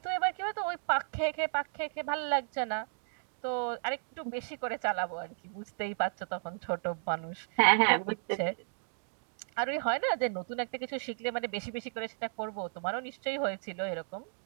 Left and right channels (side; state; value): left; silent; digital silence